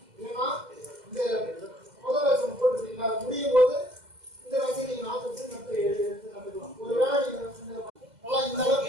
இல்லைன்னா இந்த முதல் வேஷம் போட்டுருக்கீங்களா அது முடியும் போது இந்த வேஷம் நீங்கள் நாற்று வச்சு எடுத்து நட்டுக்கலாம். ஒருவேளை நீங்கள் நல்லா இந்த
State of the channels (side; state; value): left; late; 2.0 ms